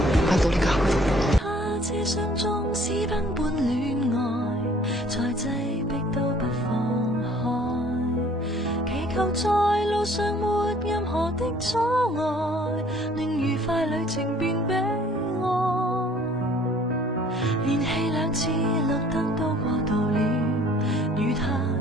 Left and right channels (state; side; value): normal; both; correlation 0.56